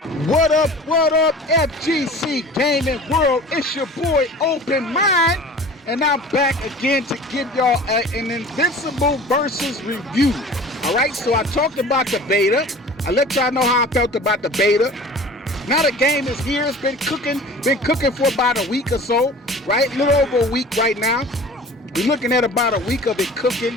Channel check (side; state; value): both; normal; correlation 0.42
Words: What up, FGC Gaming World? It's your boy Open Mind, and I'm back again to give y'all an Invincible versus review. Alright, so I talked about the beta. I let y'all know how I felt about the beta. Now the game is here. It's been cooking for about a week or so, right? A little over a week right now. We're looking at about a week of it cooking.